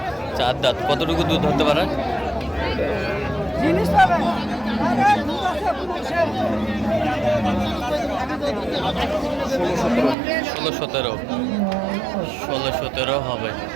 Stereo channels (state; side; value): drops out; left; at 10.2 s